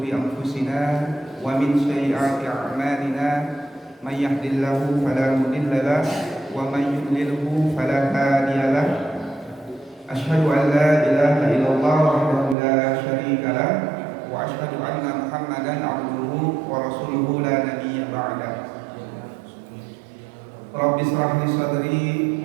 anfusina wa min sayyiati a'malina. May yahdihillahu fala mudilla lahu wa may yudlilhu fala hadiya lahu. Asyhadu an la ilaha illallah wahdahu la syarika lahu wa asyhadu anna Muhammadan abduhu wa rasuluhu la nabiyya ba'da. Rabbi shrah li sadri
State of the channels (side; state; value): left; drops out; at 12.6 s